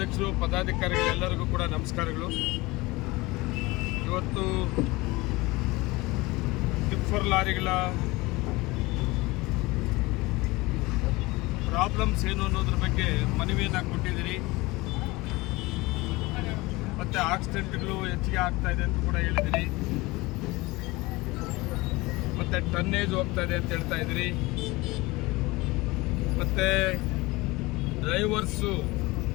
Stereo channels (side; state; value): right; quieter; 22.1 dB